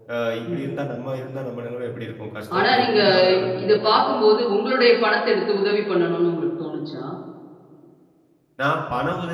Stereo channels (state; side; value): identical; both; correlation 1.00